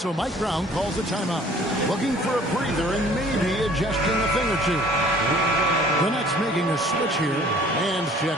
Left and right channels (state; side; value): normal; both; correlation 0.53